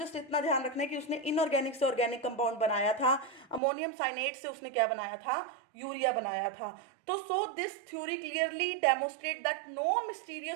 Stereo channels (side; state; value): left; drops out; at 3.6 s